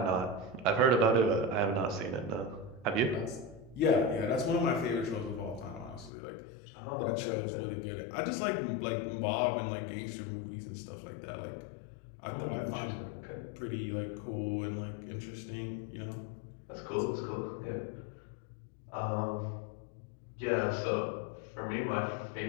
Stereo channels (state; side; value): drops out; right; at 6.1 s